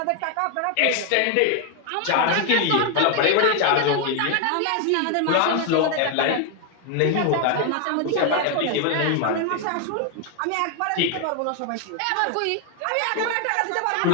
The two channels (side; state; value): both; different; correlation 0.01